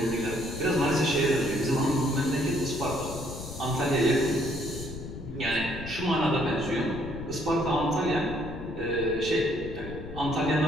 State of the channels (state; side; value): noise; left; rumble, 10 dB below the sound